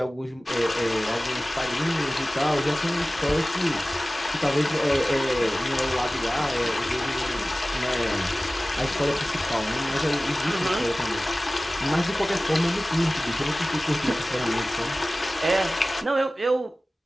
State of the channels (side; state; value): both; normal; correlation 0.97